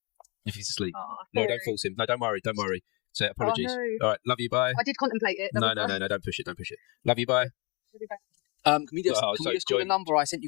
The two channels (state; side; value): quieter; right; 29.8 dB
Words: If he's asleep, no, don't force him. No, don't worry. Say apologies. No. All right, love you. Bye. I did contemplate it. No, don't push it. Love you. Bye. Can we just call the number I sent